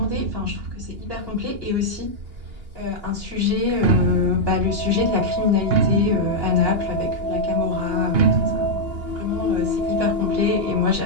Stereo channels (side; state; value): left; late; 2.8 ms